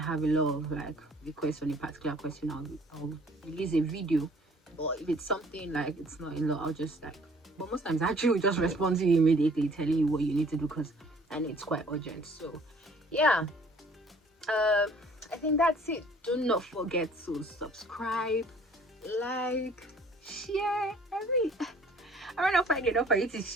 a lot of like requests on a particular question, I'll release a video. But if it's something like it's not a lot, I'll just like, but most times I actually will just respond to you immediately, telling you what you need to do, because I know it's quite urgent. So yeah, I think that's it. Do not forget to subscribe, like, share. I don't know if I get enough for you to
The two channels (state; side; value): normal; both; correlation 0.56